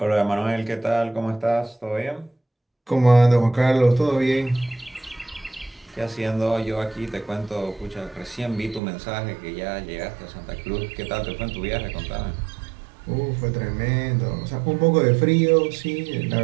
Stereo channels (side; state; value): left; drops out; at 8.8 s